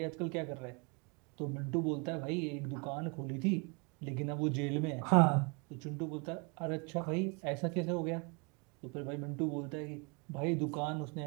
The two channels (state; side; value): quieter; left; 33.3 dB